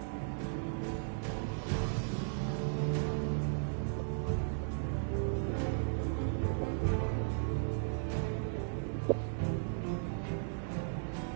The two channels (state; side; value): silent; left; digital silence